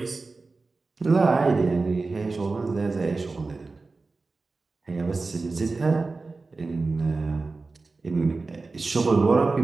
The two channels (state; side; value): quieter; left; 3.8 dB